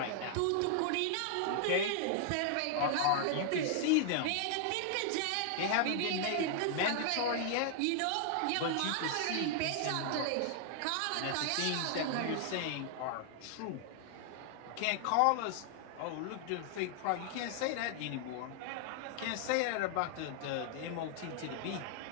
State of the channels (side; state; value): both; different; correlation 0.00